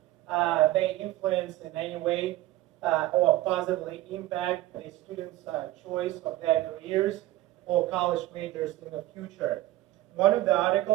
they influence in any way or positively impact the students' choice of their careers or college majors in the future. One of the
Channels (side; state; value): left; quieter; 15.8 dB